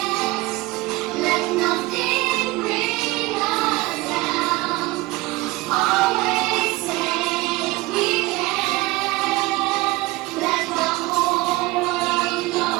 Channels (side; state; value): left; quieter; 20.4 dB